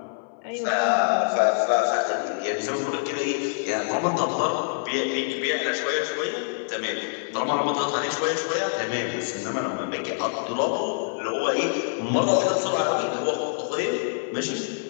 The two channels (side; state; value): right; silent; 59 dB below the other